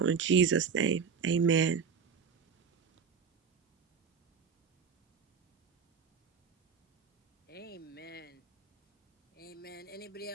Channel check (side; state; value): left; quieter; 6.1 dB